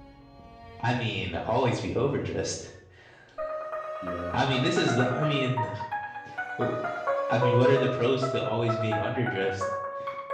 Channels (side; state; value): both; identical; correlation 1.00